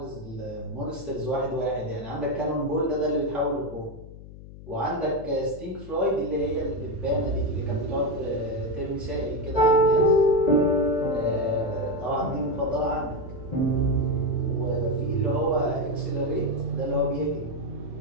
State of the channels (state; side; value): noise; left; hum, 16 dB below the sound